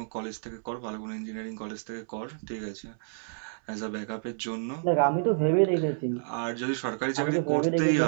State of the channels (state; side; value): silent; left; 58 dB below the other